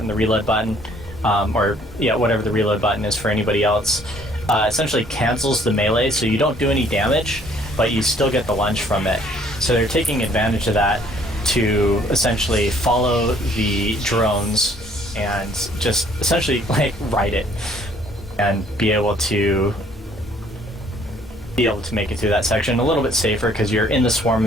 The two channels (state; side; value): normal; both; correlation 0.61